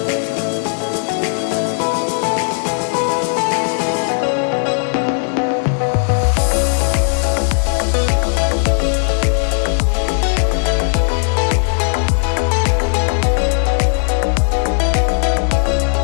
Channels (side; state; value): right; silent; 58 dB below the other